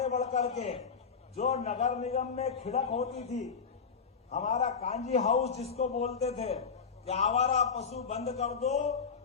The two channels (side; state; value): right; quieter; 5.8 dB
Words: बढ़ करके जो नगर निगम में खिड़क होती थी, हमारा कांजी हाउस जिसको बोलते थे कि आवारा पशु बंद कर दो